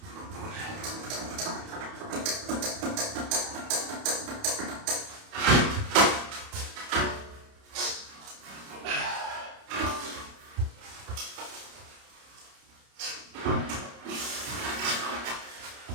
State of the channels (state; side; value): late; left; 30 ms